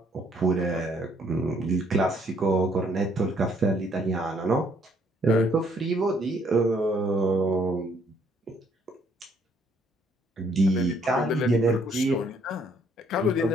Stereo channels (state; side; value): normal; both; correlation 0.66